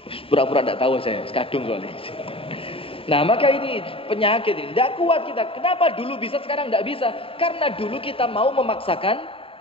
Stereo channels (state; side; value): late; right; 0.27 ms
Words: Pura-pura enggak tahu saya, sekadung soalnya. Nah, maka ini penyakit ini. Enggak kuat kita. Kenapa dulu bisa sekarang enggak bisa? Karena dulu kita mau memaksakan